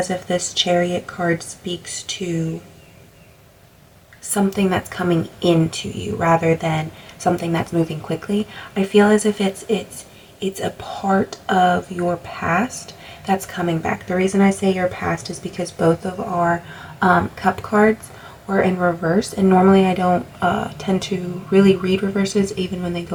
if this Chariot card speaks to something that's coming into you rather than something that's moving quickly. I feel as if it's a part of your past that's coming back. The reason I say your past is because both of our cup cards were in reverse, and normally I don't tend to really read reverses. Even when they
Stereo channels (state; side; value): identical; both; correlation 1.00